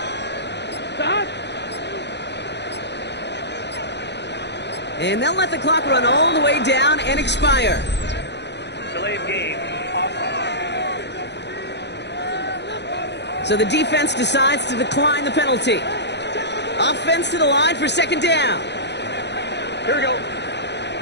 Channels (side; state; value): right; late; 0.50 ms